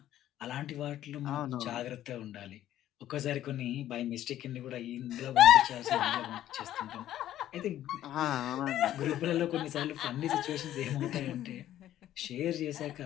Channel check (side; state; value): right; quieter; 12.5 dB